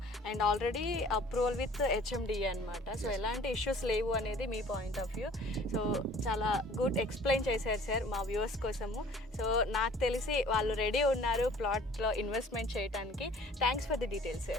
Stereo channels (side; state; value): both; normal; correlation 0.50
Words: and already approval with HMDA అనమాట. సో ఎలాంటి ఇష్యూస్ లేవు అనేది మీ పాయింట్ ఆఫ్ వ్యూ. సో చాలా గుడ్ ఎక్స్ప్లెయిన్ చేశారు సార్ మా వ్యూవర్స్ కోసము. సో నాకు తెలిసి వాళ్ళు రెడీ ఉన్నారు ప్లాట్లో ఇన్వెస్ట్మెంట్ చేయడానికి. Thanks for the details